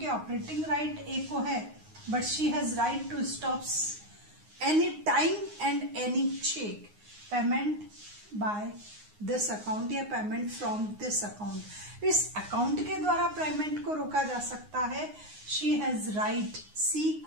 के operating right एक को है but she has right to stop any time and any check payment by this account या payment from this account. इस account के द्वारा payment को रोका जा सकता है. she has right, सी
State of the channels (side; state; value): left; late; 9.6 ms